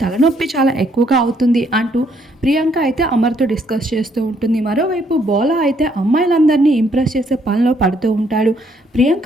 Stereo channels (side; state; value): both; normal; correlation 0.69